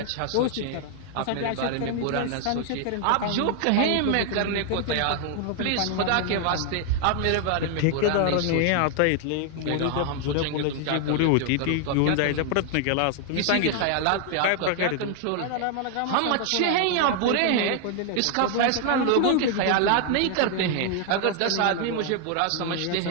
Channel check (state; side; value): different; both; correlation 0.00